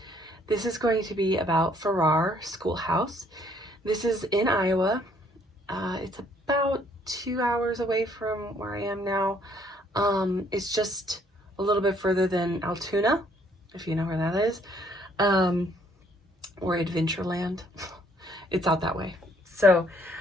This is going to be about Farrar Schoolhouse. This is in Iowa. It's about 2 hours away from where I am now. It's just a little bit further than Altoona, if you know where that is, or Adventureland. It's out that way. So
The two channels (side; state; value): both; normal; correlation 0.64